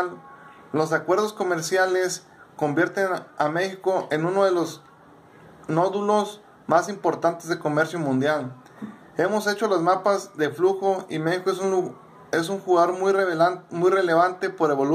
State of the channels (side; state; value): both; identical; correlation 1.00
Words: los acuerdos comerciales convierten a México en uno de los nódulos más importantes de comercio mundial. Hemos hecho los mapas de flujo y México es un jugador muy relevante por el